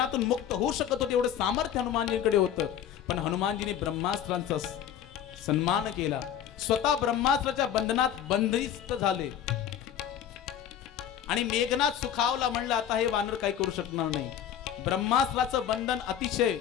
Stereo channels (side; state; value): right; quieter; 9.7 dB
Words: मुक्त होऊ शकत होते, एवढं सामर्थ्य हनुमानजींकडे होतं. पण हनुमानजीने ब्रह्मास्त्रांचा सन्मान केला, स्वतः ब्रह्मास्त्राच्या बंधनात बंदिस्त झाले. आणि मेघनाथ सुखावला, म्हणलं आता हे वानर काही करू शकणार नाही. ब्रह्मास्त्राचं बंधन अतिशय